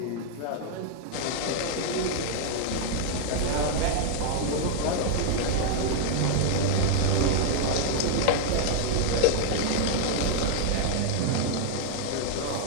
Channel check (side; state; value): both; different; correlation 0.00